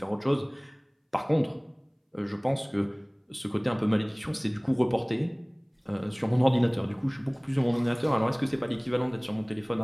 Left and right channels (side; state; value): both; identical; correlation 1.00